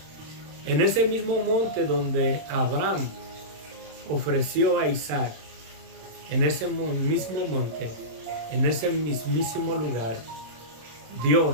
En ese mismo monte donde Abraham ofreció a Isaac, en ese mismo monte, en ese mismísimo lugar,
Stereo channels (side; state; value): left; late; 26 ms